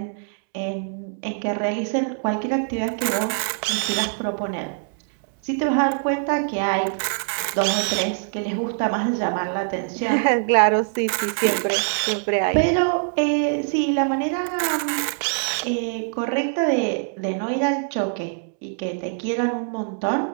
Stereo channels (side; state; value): left; silent; digital silence